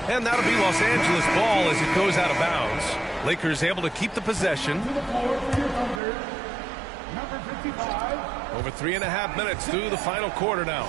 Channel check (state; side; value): drops out; left; at 6.0 s